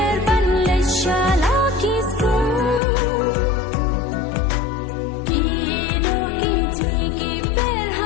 बन ले शाला किसको की दो की जी की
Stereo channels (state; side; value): drops out; right; at 2.8 s